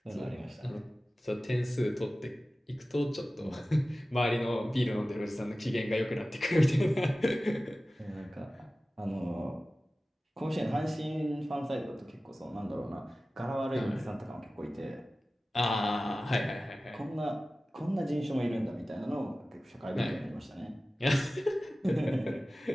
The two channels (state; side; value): normal; both; correlation 0.96